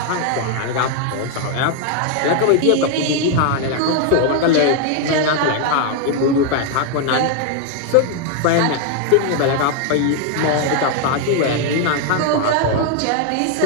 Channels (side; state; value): both; different; correlation 0.00